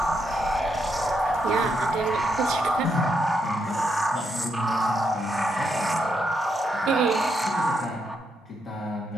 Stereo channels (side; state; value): both; normal; correlation 0.79